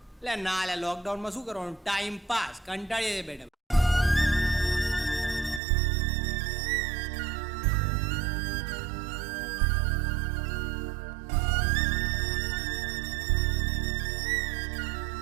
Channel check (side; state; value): left; drops out; at 5.6 s